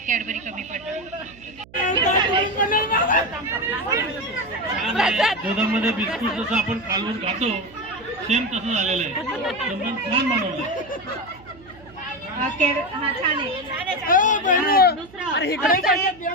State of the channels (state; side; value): noise; right; hum, 23 dB below the sound